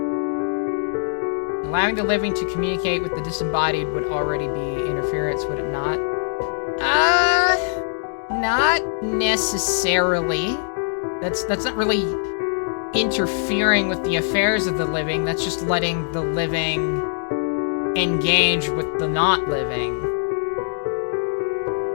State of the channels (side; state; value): right; silent; digital silence